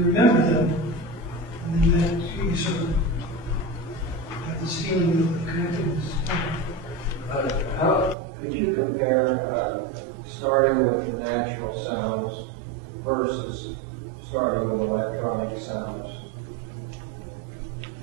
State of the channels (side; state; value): left; drops out; at 8.2 s